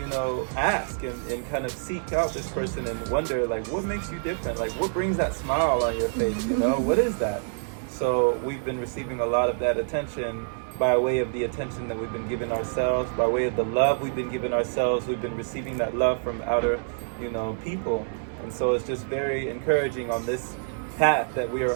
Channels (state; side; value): silent; left; 60 dB below the other